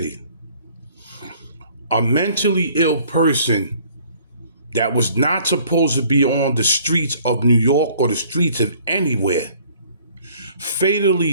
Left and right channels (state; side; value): inverted; both; correlation -0.57